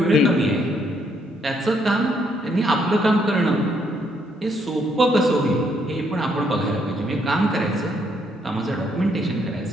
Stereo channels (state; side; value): normal; both; correlation 0.72